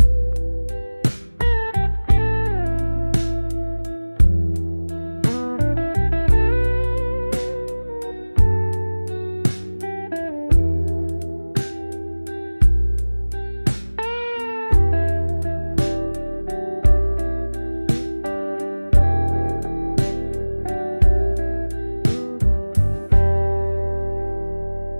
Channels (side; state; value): both; inverted; correlation -1.00